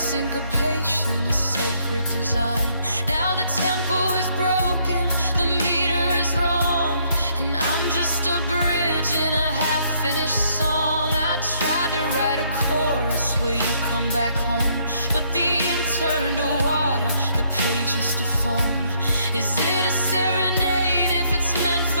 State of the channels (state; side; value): inverted; both; correlation -0.69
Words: a sacred design. Now the tempo is broken, the meter is wrong, and I'm just a bridge in a half-finished song. I tried to write a chorus where you come back home, but the ink turned to water, the pages to foam. Is it a serenade if it's meant